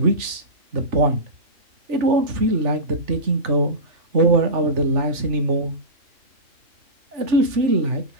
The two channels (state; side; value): late; left; 3.4 ms